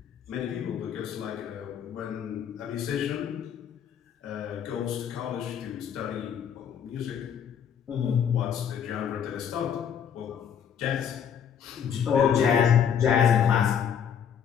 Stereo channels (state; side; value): quieter; right; 8.2 dB